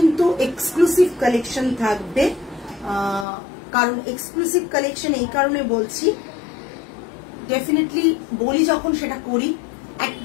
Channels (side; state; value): right; drops out; at 3.2 s